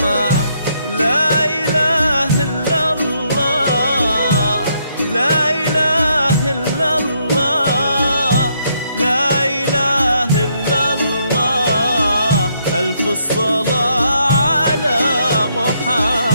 لا إله إلا الله، لا إله إلا الله، لا إله إلا الله. ألف الصلاة على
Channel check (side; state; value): both; inverted; correlation -0.74